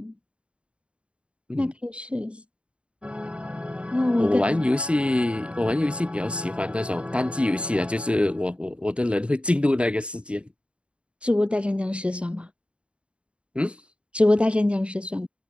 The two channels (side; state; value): left; late; 0.058 ms